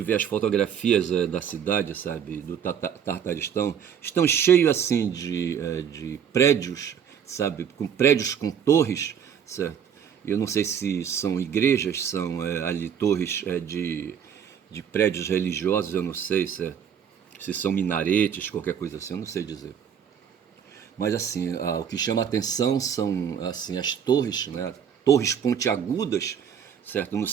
vê as fotografias da cidade, sabe, do Tartaristão, estão cheios assim de prédios, sabe, com prédios com torres, certo? Eu não sei se são igrejas, são ali torres de prédios religiosos, eu não sei se são minaretes, qualquer coisa assim, eu não sei dizer. Mas assim, o que chama a atenção são assim, as torres, né? Torres pontiagudas, certo? Não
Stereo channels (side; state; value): left; quieter; 8.1 dB